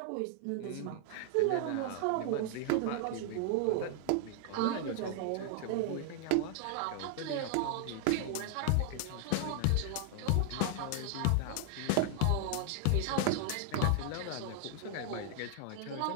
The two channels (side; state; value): both; different; correlation 0.00